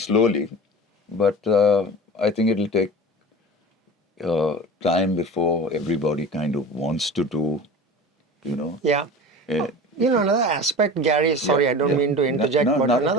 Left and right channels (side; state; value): both; normal; correlation 0.34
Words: but I think it'll take time before everybody kind of wants to do. Yeah. Another aspect, Gary, sorry, I don't mean to interject, No, but not at